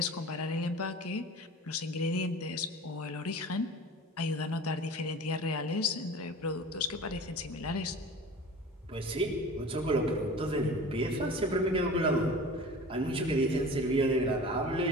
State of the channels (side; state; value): both; normal; correlation 0.38